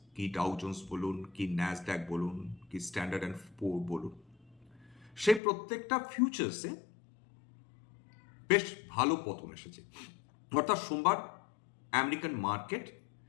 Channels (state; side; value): drops out; right; at 5.4 s